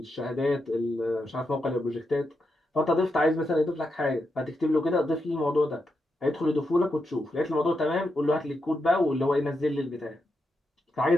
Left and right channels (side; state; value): both; normal; correlation 0.85